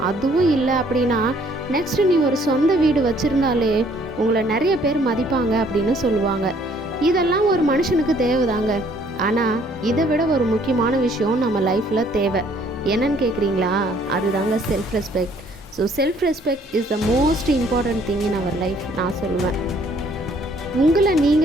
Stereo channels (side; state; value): both; normal; correlation 0.62